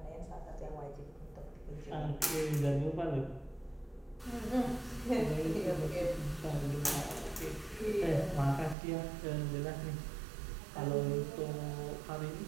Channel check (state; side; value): drops out; left; at 8.8 s